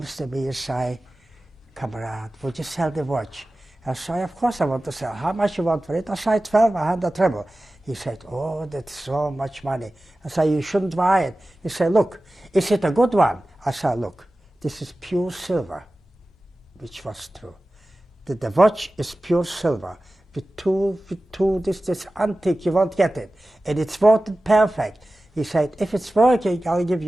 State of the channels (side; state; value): both; normal; correlation 0.96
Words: to me and say, Kamerad, would you sell the watch? I say, of course I want to sell. How much you want for it? I say, 1,200 ruble. He said, oh, that's so much money. I say, you shouldn't buy it. He said, look, is it a good one? I said, look, this is pure silver, which was true. The watch is pure silver. With two, this antique, you won't get it. And it's voted perfect. He said, if it's working, I'll give